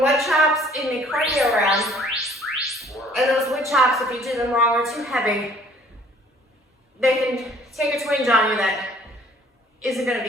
wood chops in the cardio round, and those wood chops, if you do them wrong or too heavy, they can take a twinge on you that isn't going to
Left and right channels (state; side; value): normal; both; correlation 0.56